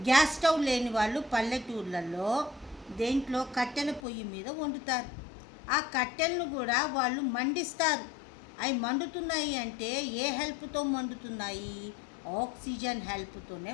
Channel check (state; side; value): drops out; right; at 4.0 s